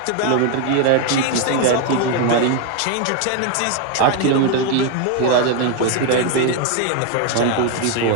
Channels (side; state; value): both; different; correlation 0.01